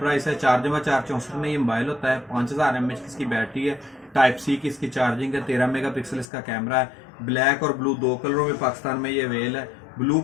है। 4x4 में ये मोबाइल होता है। 5,000 mAh की इसकी बैटरी है। टाइप सी की इसकी चार्जिंग है। 13 मेगापिक्सल इसका कैमरा है। ब्लैक और ब्लू दो कलरों में पाकिस्तान में ये अवेल है। ब्लू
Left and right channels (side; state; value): right; drops out; at 6.2 s